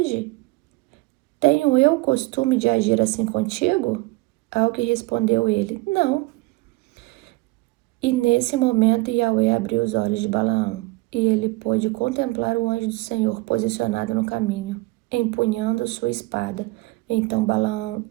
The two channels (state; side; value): quieter; left; 22.7 dB